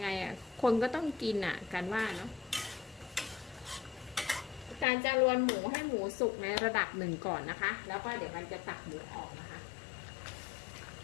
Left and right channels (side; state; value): right; drops out; at 4.9 s